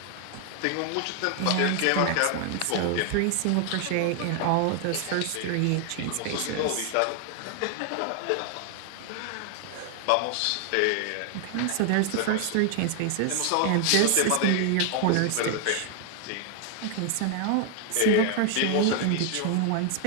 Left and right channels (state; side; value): different; both; correlation 0.00